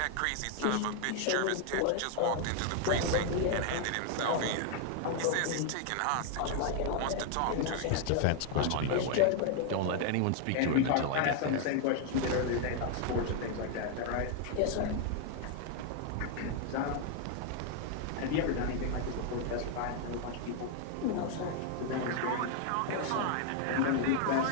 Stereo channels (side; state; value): both; different; correlation 0.00